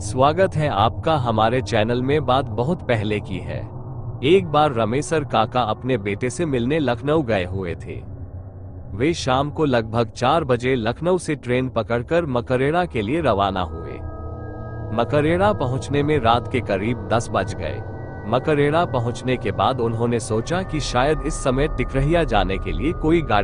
स्वागत है आपका हमारे चैनल में। बात बहुत पहले की है। एक बार रमेसर काका अपने बेटे से मिलने लखनऊ गए हुए थे। वे शाम को लगभग 4 बजे लखनऊ से ट्रेन पकड़कर मकरेड़ा के लिए रवाना हुए। मकरेड़ा पहुंचने में रात के करीब 10 बज गए। मकरेड़ा पहुंचने के बाद उन्होंने सोचा कि शायद इस समय टिकरहिया जाने के लिए कोई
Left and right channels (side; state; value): both; identical; correlation 1.00